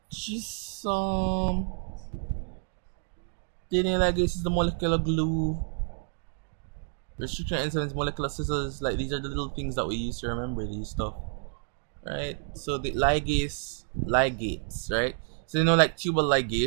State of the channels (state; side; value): silent; left; digital silence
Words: just DNA ligase is the molecular glue. Restriction enzymes, molecular scissors, like these are the little things that we use to remember these stuff, right? So the ligates, right? So you know, like tubal